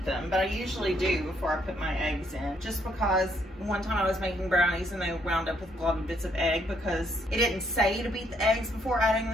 them, but I usually do before I put my eggs in. Just because one time I was making brownies and they wound up with globby bits of egg because it didn't say to beat the eggs before adding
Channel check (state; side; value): normal; both; correlation 0.71